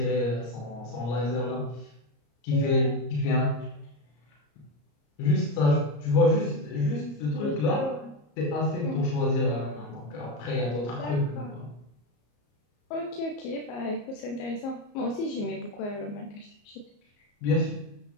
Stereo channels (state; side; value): late; right; 34 ms